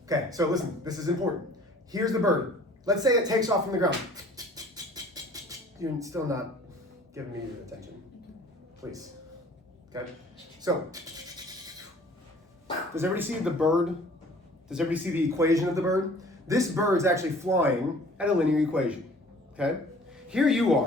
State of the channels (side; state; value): both; normal; correlation 0.51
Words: Okay, so listen, this is important. Here's the bird. Let's say it takes off from the ground. You're still not giving me your attention. Please. Okay? So, does everybody see the bird? Does everybody see the equation of the bird? This bird's actually flying at a linear equation. Okay? Here you